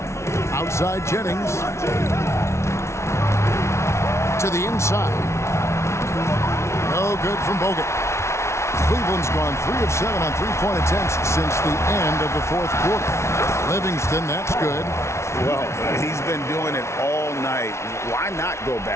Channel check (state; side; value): late; right; 0.13 ms